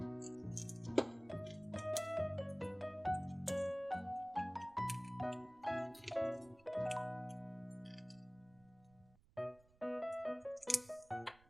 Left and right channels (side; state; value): right; noise; rumble, 28 dB below the sound